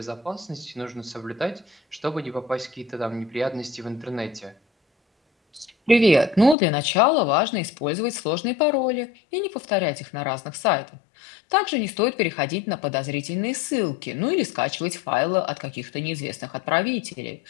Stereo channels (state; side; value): drops out; right; at 6.6 s